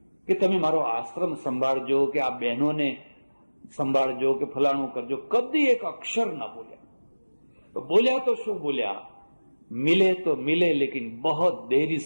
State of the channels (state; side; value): inverted; both; correlation -1.00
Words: કે તમે મારો આશ્રમ સંભાળજો કે આ બહેનોને સંભાળજો કે ફલાણું કરજો. કદી એક અક્ષર ના બોલ્યા. તો બોલ્યા તો શું બોલ્યા? મિલે તો મિલે લેकिन बहुत देरी